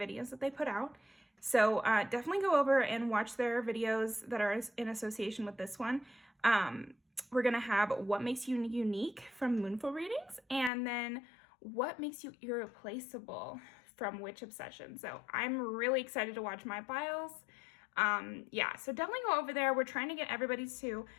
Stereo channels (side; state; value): right; drops out; at 10.7 s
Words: that they put out. So definitely go over and watch their videos that are in association with this one. We're going to have what makes you unique from Moonful Readings, and then what makes you irreplaceable from Witch Obsession. So I'm really excited to watch my files. Yeah, so definitely go over there. We're trying to get everybody to